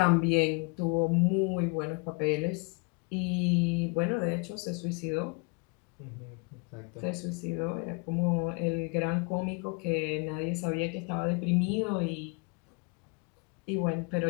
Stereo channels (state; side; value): quieter; right; 31.7 dB